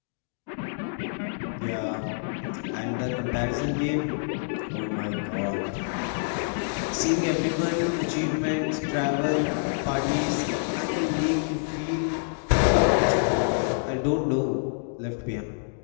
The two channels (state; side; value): silent; right; digital silence